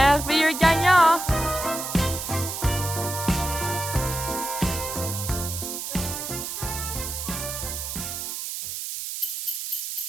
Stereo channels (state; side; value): noise; right; hiss, 5 dB below the sound